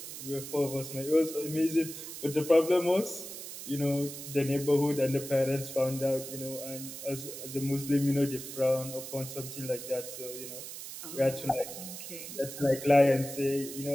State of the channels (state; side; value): noise; right; hiss, 10 dB below the sound